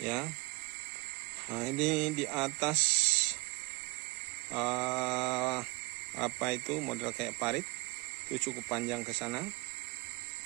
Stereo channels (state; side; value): quieter; left; 25.6 dB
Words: ya. Nah, ini di atas apa itu model kayak parit itu cukup panjang ke sana,